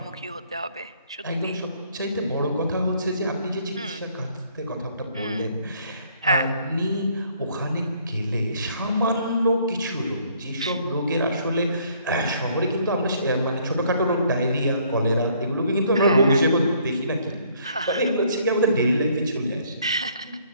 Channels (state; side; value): inverted; both; correlation -0.64